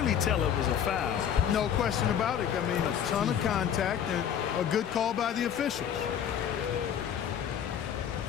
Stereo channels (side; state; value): right; quieter; 8.9 dB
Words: tell it was a foul. No question about it. I mean, a ton of contact and a good call by the officials.